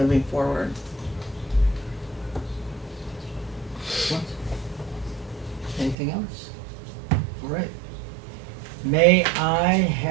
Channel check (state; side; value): drops out; left; at 6.0 s